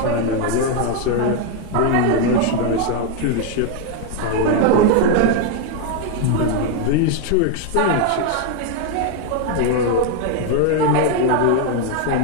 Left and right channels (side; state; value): both; different; correlation 0.01